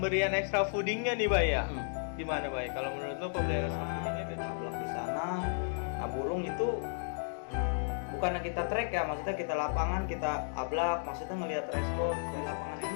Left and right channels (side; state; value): right; silent; digital silence